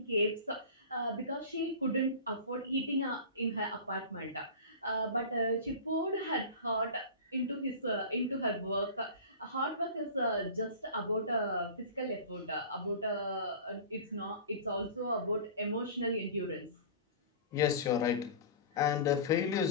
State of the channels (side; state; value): both; inverted; correlation -0.35